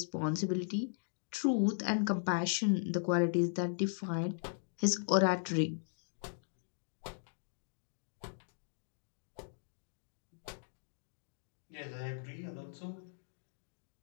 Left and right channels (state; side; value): silent; right; digital silence